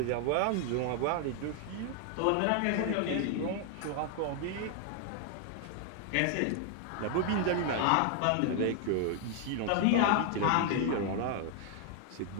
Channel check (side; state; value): both; different; correlation 0.00